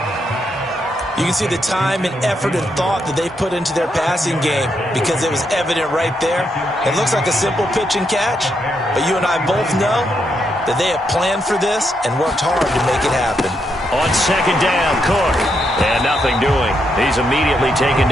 You can see the time and effort and thought that they've put into their passing game because it was evident right there. It looks like a simple pitch and catch, but you and I both know that they have planned for this and worked hard to make it happen. On second down, Cook. And nothing doing. He's immediately taken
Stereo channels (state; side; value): normal; both; correlation 0.79